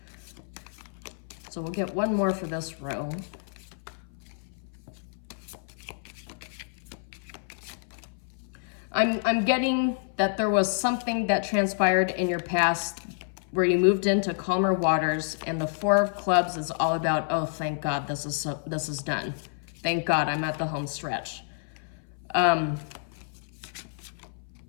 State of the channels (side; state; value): right; silent; 57 dB below the other